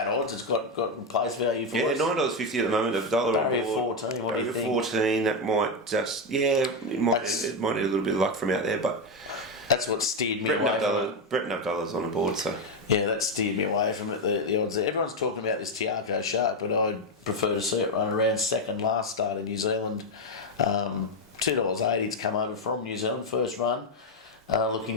odds. It's got place value for us. $9.50 at the moment. $1 Barrier on board. 14. What do you think? 14. That might just it might need a little bit of luck from out there, but that's what steered me away from it. Brett $9 on the board, so. Yeah, that steered me away from it, the odds there. Everyone's talking about this Tiago Shark, but I'd prefer to see it run around second last start in New Zealand. $2.80 to come over from New Zealand, first run. Looking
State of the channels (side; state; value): both; normal; correlation 0.07